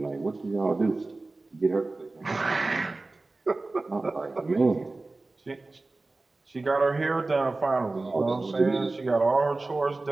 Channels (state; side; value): quieter; left; 3.3 dB